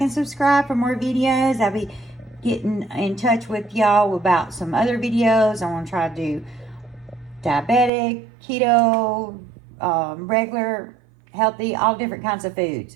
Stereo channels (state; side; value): drops out; left; at 7.9 s